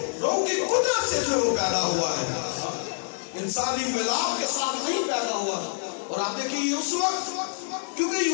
روح کی قدرت سے جو ہے وہ پیدا ہوا ہے, انسانی ملاپ کے ساتھ نہیں پیدا ہوا. اور آپ دیکھیے اس وقت کیونکہ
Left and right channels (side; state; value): right; silent; 61 dB below the other